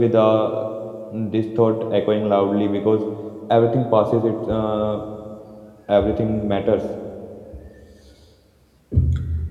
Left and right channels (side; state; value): both; identical; correlation 1.00